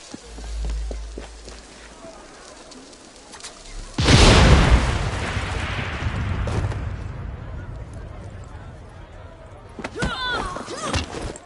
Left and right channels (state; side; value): identical; both; correlation 1.00